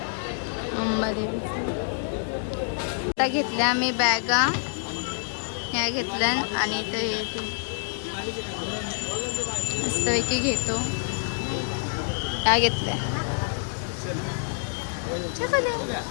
मुंबादेवीचं. आता घेतल्या आम्ही बॅगा ह्या घेतल्या. आणि इथं हे ते मस्तपैकी घेतो. ह्या घेतल्या.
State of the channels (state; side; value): silent; right; digital silence